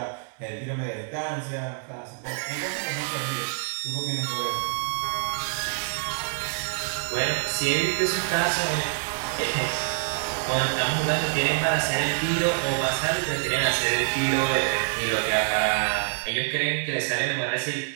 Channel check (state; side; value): silent; left; digital silence